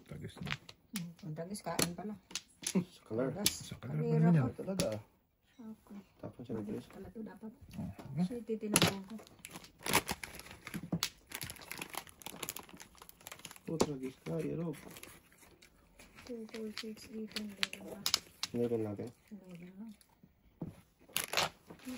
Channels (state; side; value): identical; both; correlation 1.00